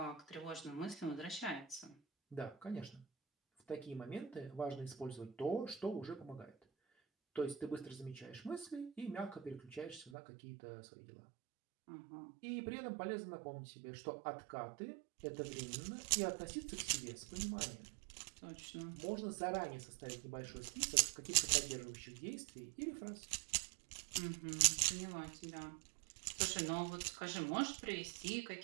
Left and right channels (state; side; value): drops out; left; at 10.1 s